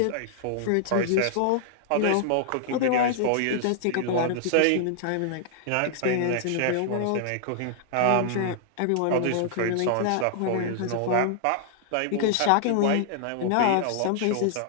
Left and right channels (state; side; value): different; both; correlation -0.01